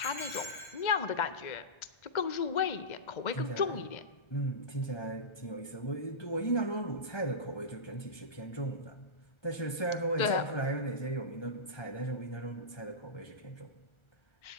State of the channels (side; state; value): right; late; 1.3 ms